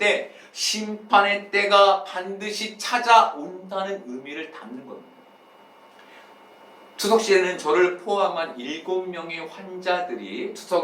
심판의 때가 반드시 찾아온다는 의미를 담는 겁니다. 추석 시에는 저를 포함한 7명의 환자들이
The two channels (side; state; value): both; identical; correlation 1.00